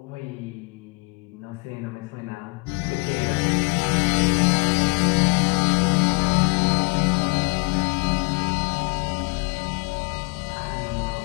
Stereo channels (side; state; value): right; quieter; 29.9 dB